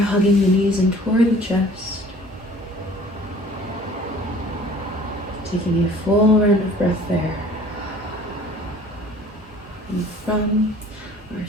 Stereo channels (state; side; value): normal; both; correlation 0.50